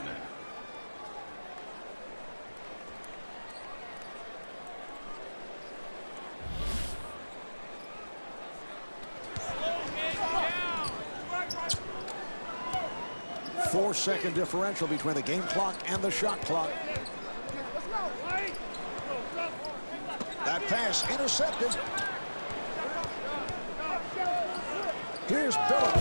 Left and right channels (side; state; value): both; inverted; correlation -1.00